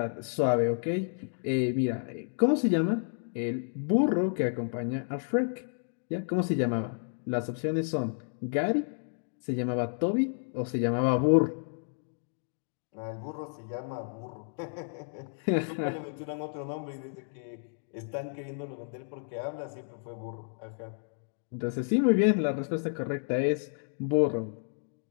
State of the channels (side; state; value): right; silent; digital silence